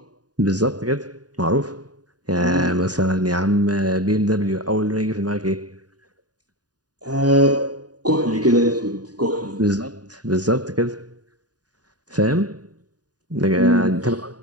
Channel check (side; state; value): left; late; 0.68 ms